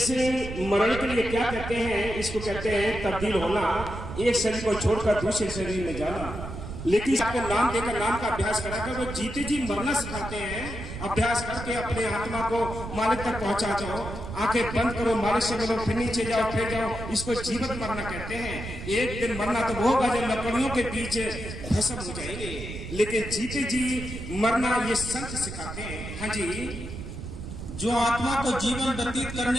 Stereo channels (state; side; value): noise; right; rumble, 9 dB below the sound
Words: मरण के लिए क्या कहते हैं? इसको कहते हैं तब्दील होना, एक शरीर को छोड़कर दूसरे शरीर में जाना। लेकिन आपको नाम देकर, नाम का अभ्यास कराकर वो जीते जी मरना सिखाते हैं। अभ्यास करके अपने आत्मा को मालिक तक पहुंचा जाओ। आंखें बंद करो, मालिक से मिलो, फिर नीचे जाओ, फिर जाओ। इसको जीवित मरना कहते हैं। एक दिन मरना तो वो होगा जब लकड़ियों के बीच भस्म हो जाएंगे, लेकिन जीते जी मरना ये संत सिखाते हैं। हाँ जी, जो आत्मा को जीवन व्यतीत